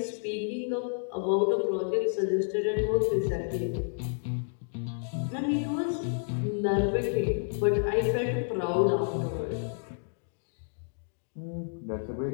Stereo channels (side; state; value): right; silent; digital silence